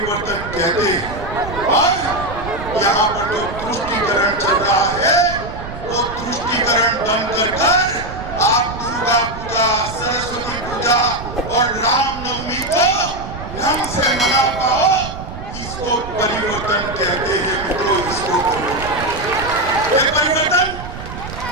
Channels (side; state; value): right; noise; rumble, 10 dB below the sound